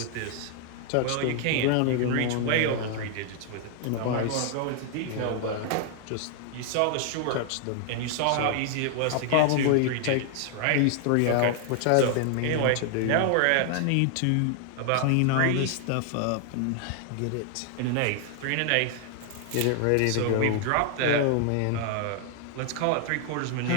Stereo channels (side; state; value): both; different; correlation 0.00